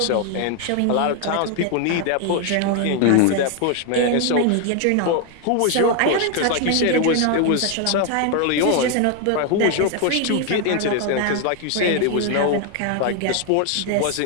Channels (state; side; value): different; both; correlation 0.00